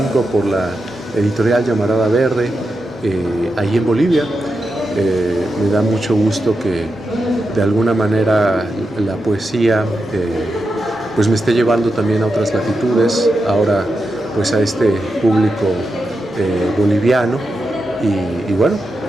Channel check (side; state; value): both; normal; correlation 0.88